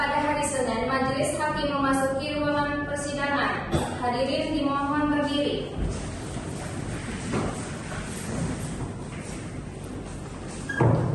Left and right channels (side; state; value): both; identical; correlation 1.00